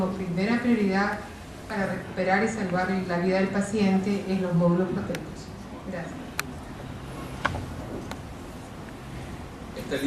primera prioridad para recuperar y salvar la vida del paciente en los módulos proteicos. Gracias. Esta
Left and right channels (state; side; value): identical; both; correlation 1.00